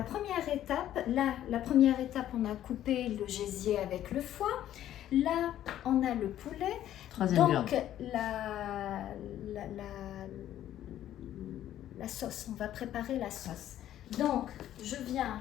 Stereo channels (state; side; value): quieter; right; 12.0 dB